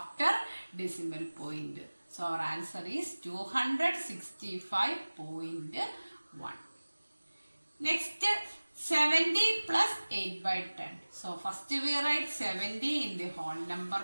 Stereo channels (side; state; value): both; inverted; correlation -1.00